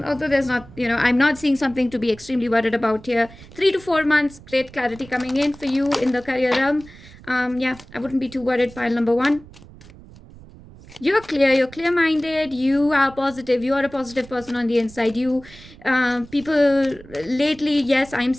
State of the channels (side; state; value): right; noise; rumble, 20 dB below the sound